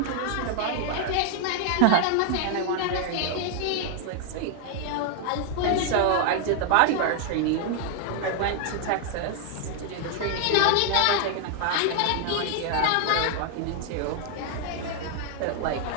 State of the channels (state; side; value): different; both; correlation 0.00